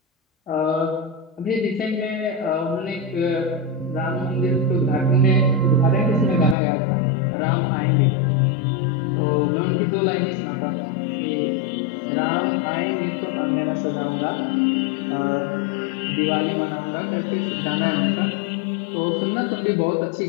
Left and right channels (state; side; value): drops out; right; at 6.6 s